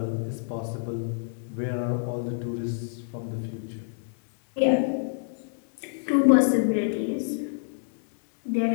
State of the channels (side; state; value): right; silent; digital silence